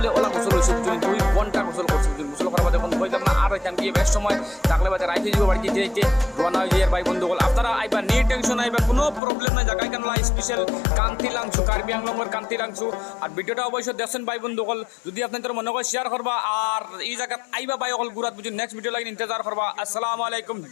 ওলা গোসল হয়েছে 2 ঘন্টা গোসল করছে। গোসল করার বাদে বলতাম না আর হইতাম গিয়ে বেশ সময় থাকলে বাদে রাইতে যাব বাড়িতে যেতে রওনা হয়ে যায় ভাই বন্ধুগণ। আপনারা আইবা নিয়ে টেনশন আইবা, কোনো প্রবলেম নাই। জায়গায় কেন স্পেশাল কান্তিলাংসু, কার্বি আংলংয়ের কান্তিলাংসু। আর ভিডিওটা অবশ্যই দেখছেন ভাই বন্ধুগণ। যদি আপনাদের মনে হয় শেয়ার করবা আর এই জায়গা আইবা ভাই অকল গুরাত বুঝি নেক্সট ভিডিও লাগে ইন্তজার করবা। আসসালামু আলাইকুম,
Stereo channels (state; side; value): drops out; right; at 9.2 s